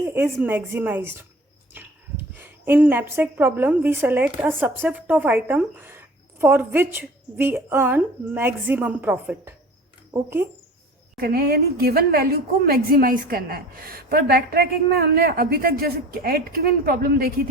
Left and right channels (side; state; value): both; normal; correlation 0.42